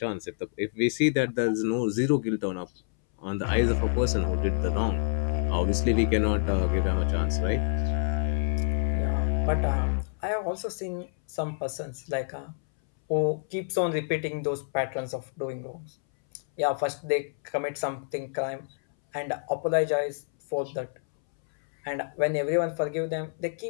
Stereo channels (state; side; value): silent; right; 60 dB below the other